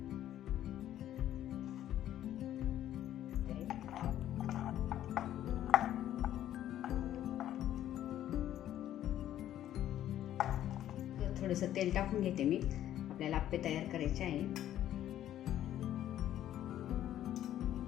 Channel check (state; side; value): quieter; right; 12.0 dB